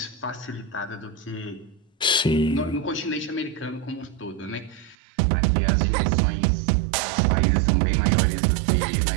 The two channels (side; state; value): left; drops out; at 5.0 s